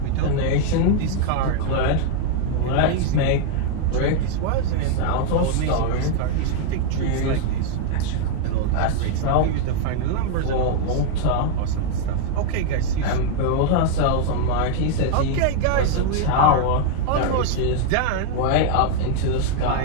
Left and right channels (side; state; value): both; different; correlation 0.00